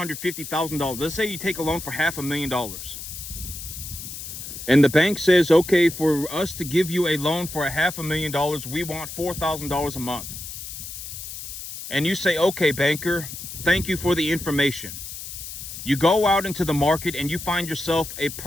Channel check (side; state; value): left; noise; hiss, 10 dB below the sound